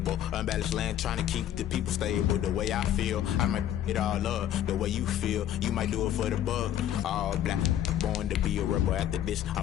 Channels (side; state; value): right; quieter; 11.4 dB